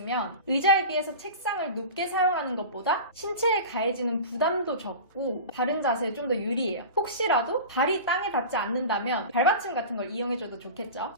의자에 비해서 책상을 높게 사용하는 것보다 신체에 가해지는 부담도 적고 바른 자세에 좀 더 유리해요. 혹시라도 발이 땅에 닿지 않는다면 발받침 같은 걸 이용해줘도 좋겠죠.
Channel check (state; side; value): inverted; both; correlation -0.32